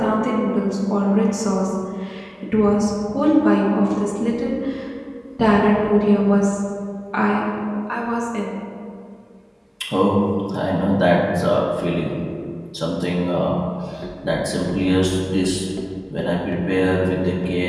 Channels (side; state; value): both; identical; correlation 1.00